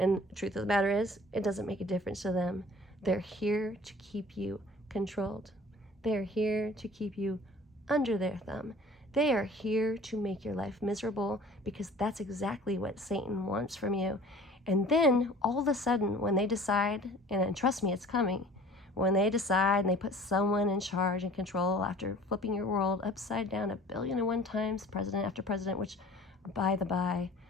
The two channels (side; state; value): both; normal; correlation 0.48